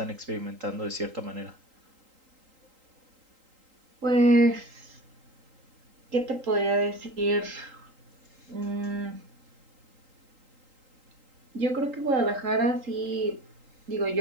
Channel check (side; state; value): left; late; 3.8 ms